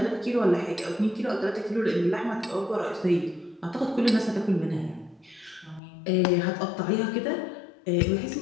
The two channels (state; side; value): drops out; right; at 5.8 s